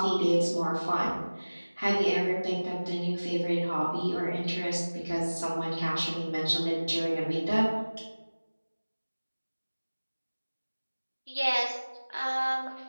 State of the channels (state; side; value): inverted; both; correlation -1.00